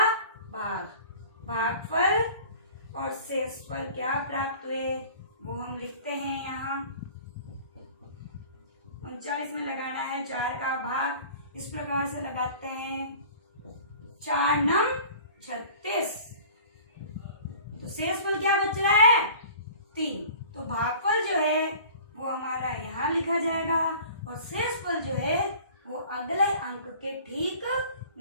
भाग। भागफल और शेषफल क्या प्राप्त हुए वो हम लिखते हैं यहाँ। 39 में लगाना है 4 का भाग। इस प्रकार से लगाते हैं 4 नम 36। तो शेषफल क्या बच रहा है? 3। तो भागफल जो है वो हमारा यहाँ लिखा जाएगा और शेषफल जो है वो अगले अंक के ठीक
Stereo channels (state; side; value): inverted; both; correlation -0.45